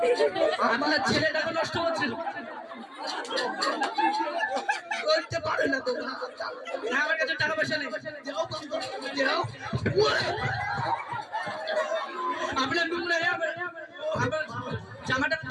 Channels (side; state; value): both; identical; correlation 1.00